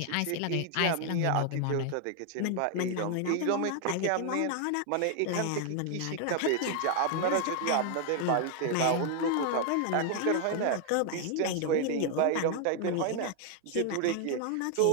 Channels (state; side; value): different; both; correlation 0.00